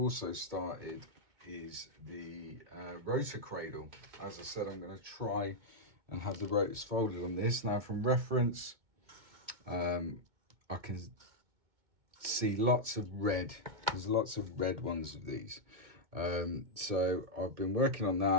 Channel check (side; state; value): left; late; 2.2 ms